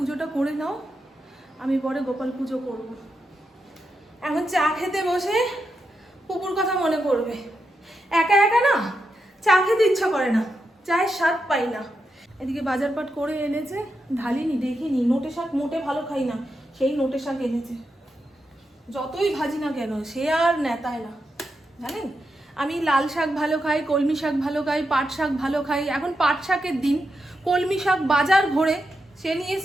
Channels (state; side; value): normal; both; correlation 0.86